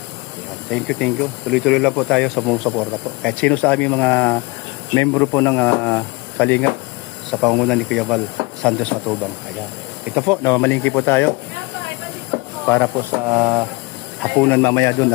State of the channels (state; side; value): quieter; right; 26.0 dB